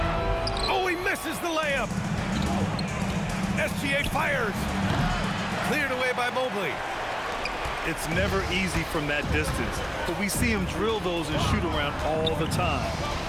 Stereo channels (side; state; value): both; identical; correlation 1.00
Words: Oh, he misses the layup. SGA fires. Cleared away by Mobley. It's never easy from that distance, but we see him drill those and shoot around all the time.